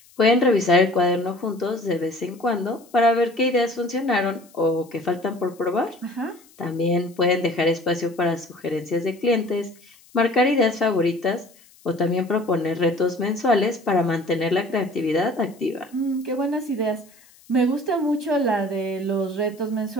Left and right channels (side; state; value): left; noise; hiss, 27 dB below the sound